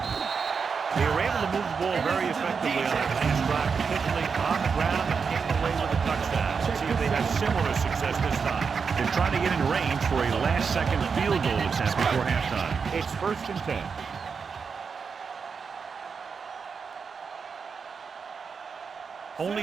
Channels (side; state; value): left; quieter; 5.7 dB